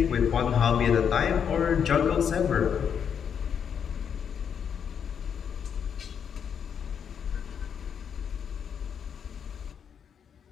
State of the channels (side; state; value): right; quieter; 7.7 dB